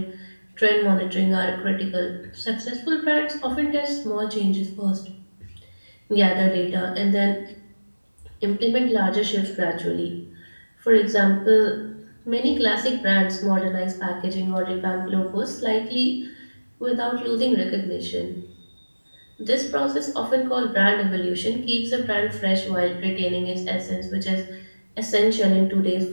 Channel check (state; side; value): inverted; both; correlation -1.00